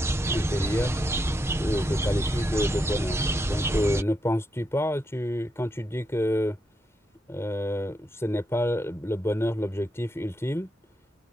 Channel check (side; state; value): both; normal; correlation 0.82